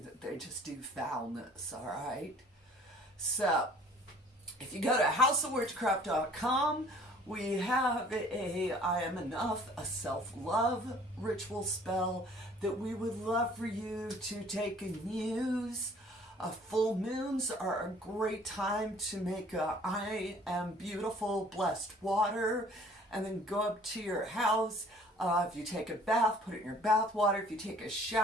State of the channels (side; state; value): both; normal; correlation 0.53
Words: they just do foulness, all right? So, if you go to houseofwitchcraft.com, we have a I Am Enough, a self-love ritual spell that we would love for you to take and use. Full moons are a great time to make a I Am Beautiful blessed water, and then go up to your house. If you take a bath, put it in your bath water. If you take a